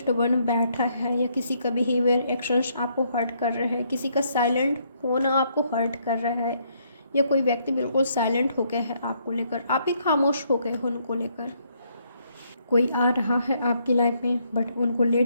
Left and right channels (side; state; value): both; inverted; correlation -0.72